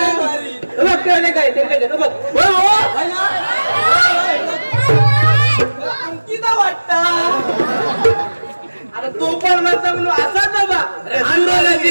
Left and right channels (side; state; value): both; inverted; correlation -1.00